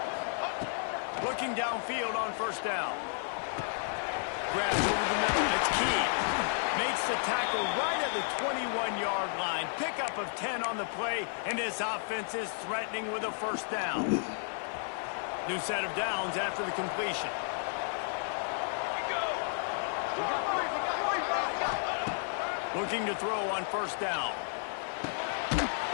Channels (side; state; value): right; silent; digital silence